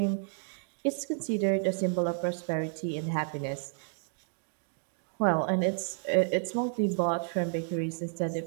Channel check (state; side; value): silent; left; digital silence